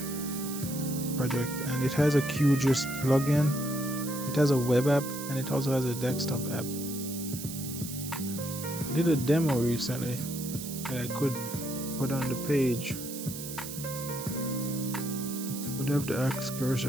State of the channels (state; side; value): noise; right; hiss, 9 dB below the sound